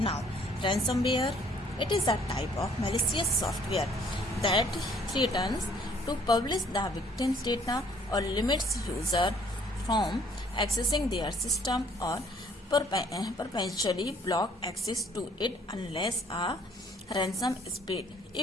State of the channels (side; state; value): both; normal; correlation 0.60